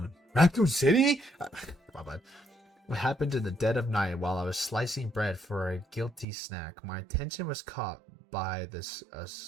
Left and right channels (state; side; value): drops out; left; at 6.2 s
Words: Raccoon City? My bad. What happened in the dead of night while I was slicing bread for a guilty snack? My attention was caught by the